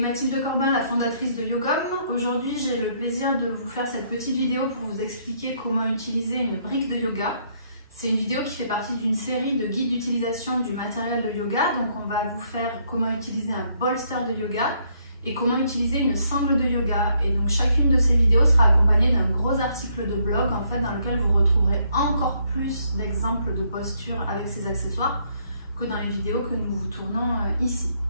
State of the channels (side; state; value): both; inverted; correlation -0.70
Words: Corbin, la fondatrice de Yogom. Aujourd'hui, j'ai le plaisir de vous faire cette petite vidéo pour vous expliquer comment utiliser une brique de yoga. C'est une vidéo qui fait partie d'une série de guides d'utilisation du matériel de yoga. Donc on va vous faire comment utiliser un bolster de yoga et comment utiliser une sangle de yoga. Et donc chacune de ces vidéos sera accompagnée d'un gros article de blog en fait, dans lequel vous retrouverez encore plus d'exemples de postures avec ces accessoires que dans les vidéos que nous vous tournons ici.